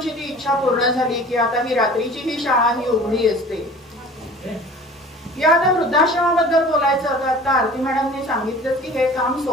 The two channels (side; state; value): both; normal; correlation 0.44